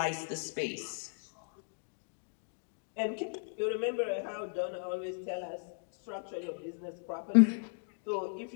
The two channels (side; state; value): right; silent; digital silence